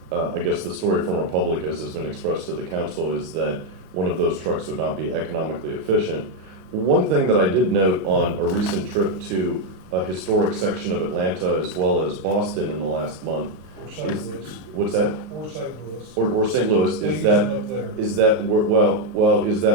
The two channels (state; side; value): late; left; 33 ms